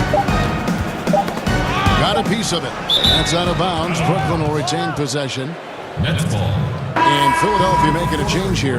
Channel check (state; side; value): identical; both; correlation 1.00